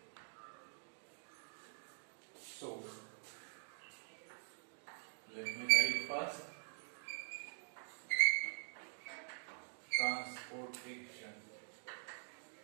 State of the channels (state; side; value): silent; left; digital silence